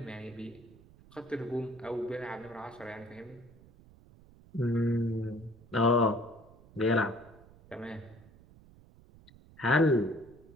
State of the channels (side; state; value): right; noise; rumble, 24 dB below the sound